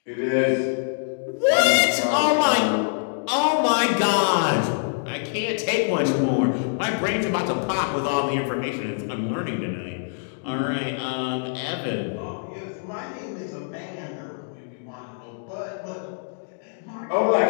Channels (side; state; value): right; silent; digital silence